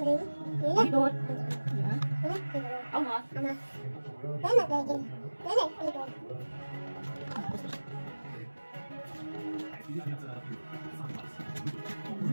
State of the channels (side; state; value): both; inverted; correlation -1.00